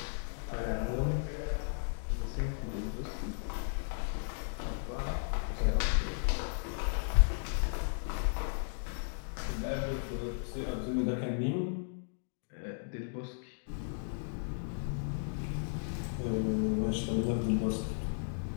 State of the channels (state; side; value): silent; right; digital silence